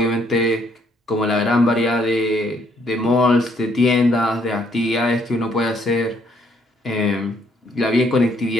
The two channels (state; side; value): normal; both; correlation 0.68